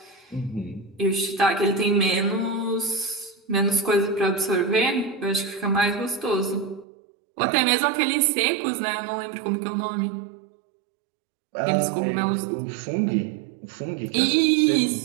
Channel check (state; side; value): drops out; left; at 6.9 s